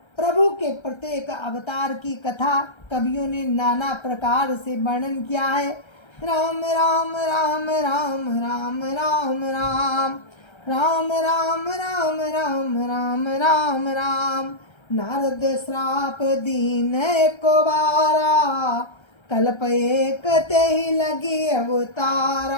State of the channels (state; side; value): late; right; 1.3 ms